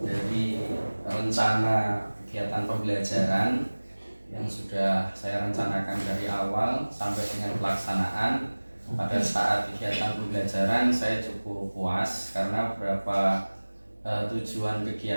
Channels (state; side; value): inverted; both; correlation -1.00